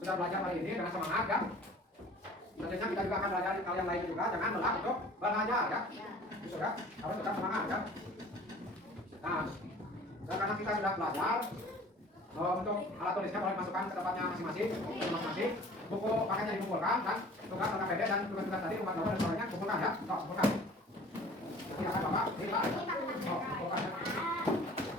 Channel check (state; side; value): normal; both; correlation 0.47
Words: belajar hari ini dengan semangat ya. Selanjutnya kita juga akan belajar hal yang lain juga, jangan lelah untuk belajar ya. Gitu ya, harus tetap semangat ya. Nah, karena kita sudah belajar, untuk alat tulisnya boleh masukkan ke tempatnya masing-masing. Buku paketnya dikumpulkan dan tugas tanda pendek dan tugas-tugas tadi umat gambar dan sebagainya kumpulkan ya. Kumpulkan. Silakan Bapak. Kumpulkan ya.